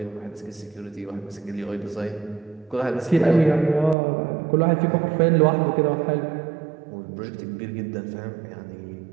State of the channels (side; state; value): left; drops out; at 4.0 s